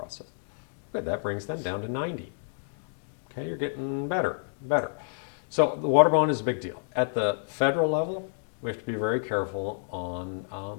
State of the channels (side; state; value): right; silent; digital silence